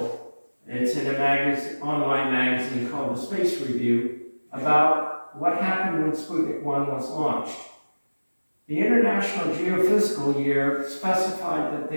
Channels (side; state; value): both; inverted; correlation -1.00